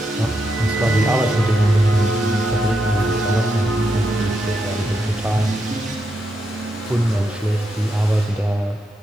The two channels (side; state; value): both; normal; correlation 0.83